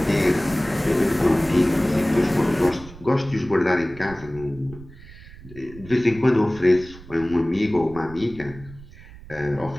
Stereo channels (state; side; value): noise; right; rumble, 18 dB below the sound